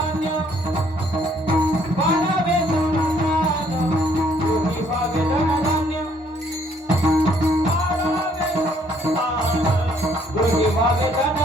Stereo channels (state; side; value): normal; both; correlation 0.65